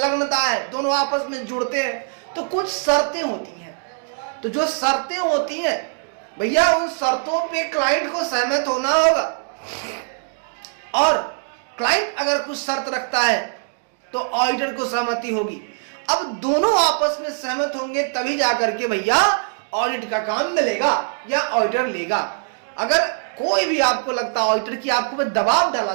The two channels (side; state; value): left; silent; digital silence